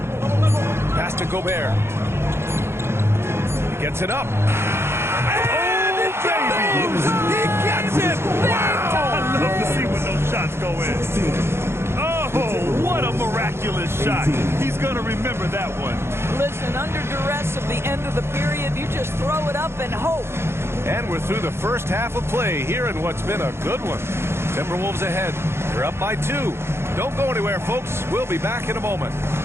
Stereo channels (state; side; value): late; left; 0.12 ms